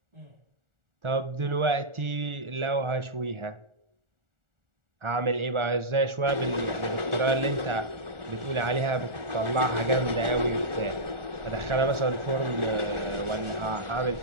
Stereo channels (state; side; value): late; left; 1.4 ms